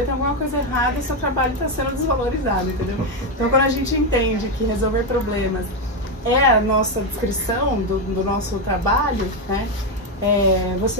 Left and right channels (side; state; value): both; normal; correlation 0.07